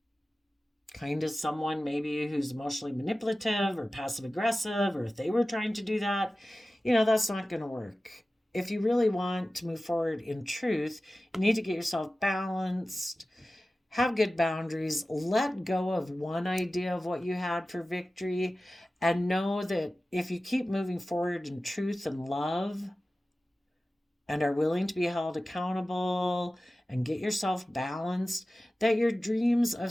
kind of someone maybe who's emotionally manipulative or passive aggressive, or if they were trying to do that, that's not going to work. If you really want to move forward in truth, you need to get yourself balanced, have good boundaries, let go of one idea of what you had for victory, and know that if you keep moving forward in truth and love and are willing to be held accountable and get yourself balanced, that your dreams of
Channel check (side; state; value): both; normal; correlation 0.96